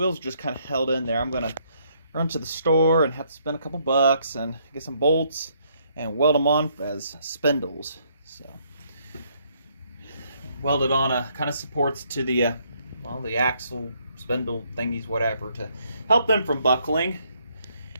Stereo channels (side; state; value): both; inverted; correlation -0.70